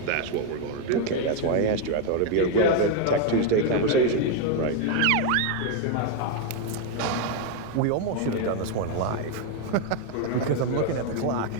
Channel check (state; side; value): different; both; correlation 0.01